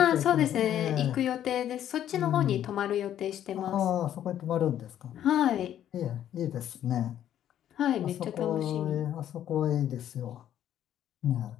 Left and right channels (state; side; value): quieter; right; 10.9 dB